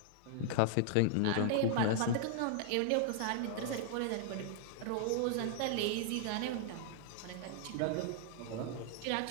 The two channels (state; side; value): different; both; correlation -0.01